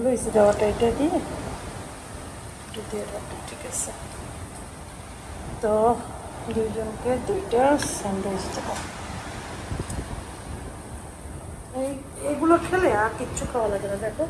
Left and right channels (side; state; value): both; identical; correlation 1.00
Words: স্যান্ডউইচ দেওয়াটা এটা দিয়ে ঠিক আছে। তো দুইজনকে 2টা স্যান্ডউইচ দেবো। এইগুলো খেলে আর কিচ্ছু খাওয়া লাগে না। দেখো